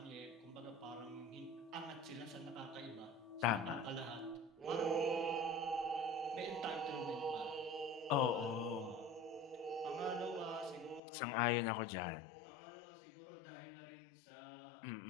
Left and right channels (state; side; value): drops out; right; at 11.0 s